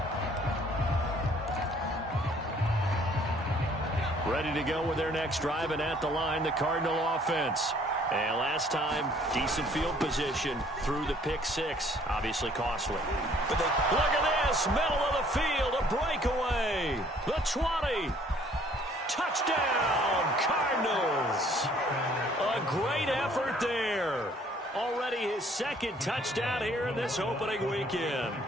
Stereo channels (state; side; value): normal; both; correlation 0.59